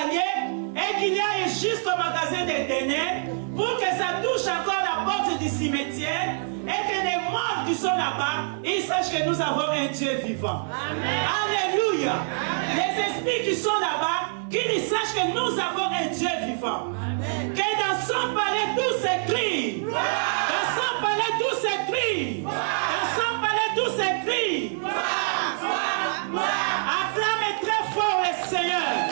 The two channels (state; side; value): silent; left; 61 dB below the other